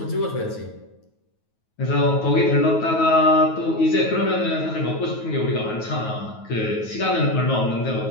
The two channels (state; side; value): late; right; 9.3 ms